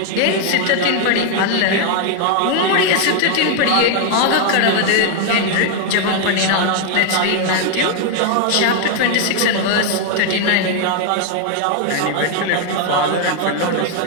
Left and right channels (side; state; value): both; different; correlation 0.00